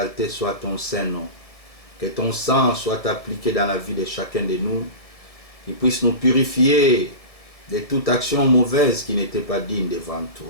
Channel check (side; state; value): right; late; 1.6 ms